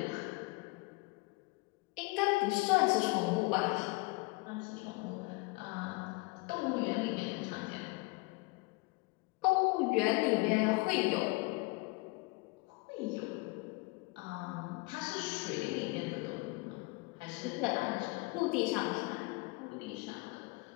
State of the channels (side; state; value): right; quieter; 25.7 dB